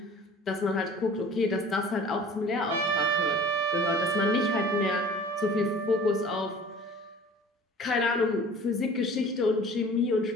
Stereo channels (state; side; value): normal; both; correlation 0.46